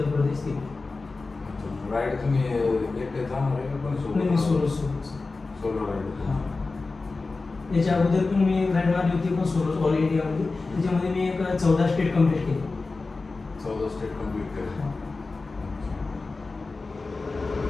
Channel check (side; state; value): right; quieter; 3.8 dB